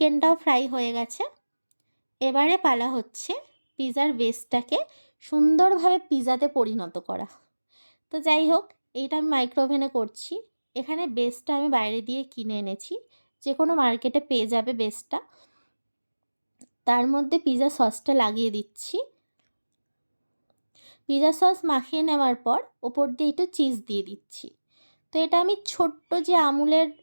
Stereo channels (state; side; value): inverted; both; correlation -1.00